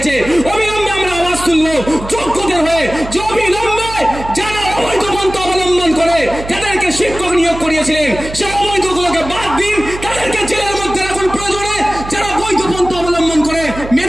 অবিলম্বে আমরা আওয়াজ তুলবো যোগ্যদের হয়ে, যে অবিলম্বে যারা অবৈধ পন্থা অবলম্বন করে তাদেরকে শিক্ষক নিয়োগ করিয়েছিলেন সেই অবৈধগুলোকে বাদ দিন, তাদেরকে জেলের মধ্যে রাখুন। প্রয়োজনে যারা বৈধ পন্থা অবলম্বন করে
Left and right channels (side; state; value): right; noise; hum, 11 dB below the sound